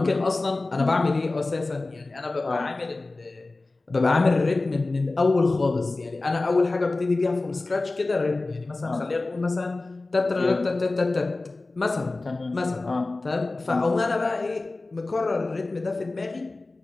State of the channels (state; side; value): quieter; right; 3.2 dB